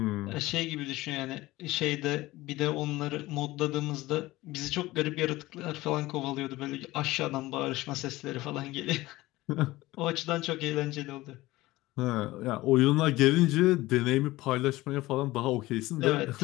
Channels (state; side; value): quieter; right; 18.5 dB